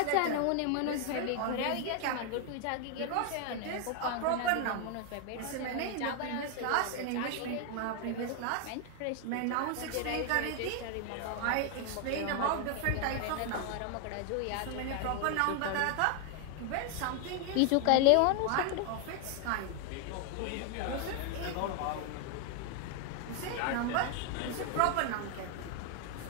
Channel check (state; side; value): different; both; correlation 0.00